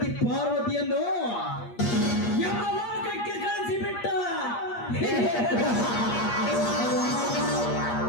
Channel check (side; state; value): right; late; 8.5 ms